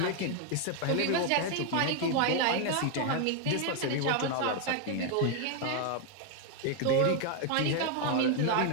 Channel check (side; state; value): both; different; correlation 0.01